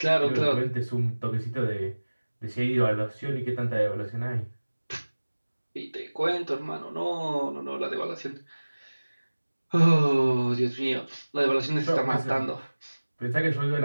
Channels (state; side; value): inverted; both; correlation -1.00